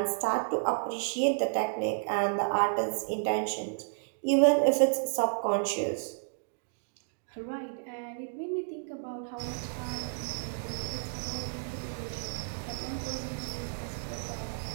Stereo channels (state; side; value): silent; left; digital silence